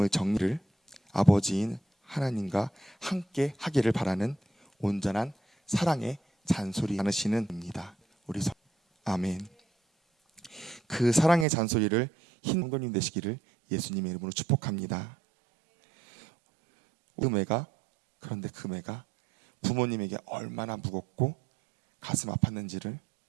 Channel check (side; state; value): left; drops out; at 11.5 s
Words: 정리를 아버지인 하나님과 함께 하기를 바라는 온전한 사랑의 잔소리 나누시는 입니다. 아멘. 그 사랑의 잔소리를 성도님 되시기를 예수님의 이름으로 축복합니다. 그런데 그 매가 부모님에게 얼마나 무겁고 가슴 아팠는지를